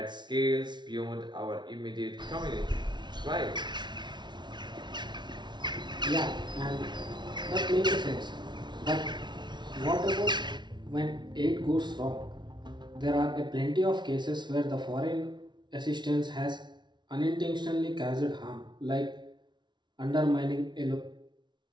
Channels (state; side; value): late; left; 0.21 ms